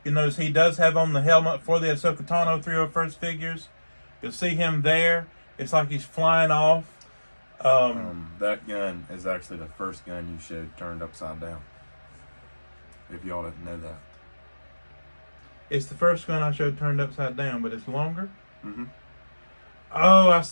You'll notice he does have on the helmet for the Ahsoka Tano 301st figures. You'll see him there. It's like he's flying off. That gun is actually the first gun you showed turned upside down. If y'all didn't know that. It's the first gun I showed turned upside down, but it's longer? Mm-hmm. Oh, I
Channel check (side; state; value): both; inverted; correlation -1.00